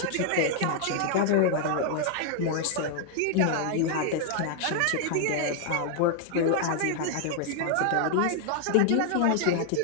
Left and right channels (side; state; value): both; different; correlation 0.00